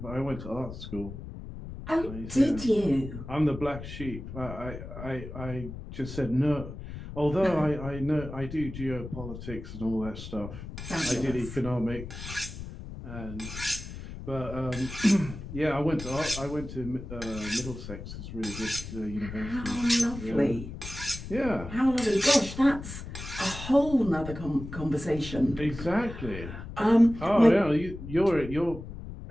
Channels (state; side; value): noise; left; rumble, 10 dB below the sound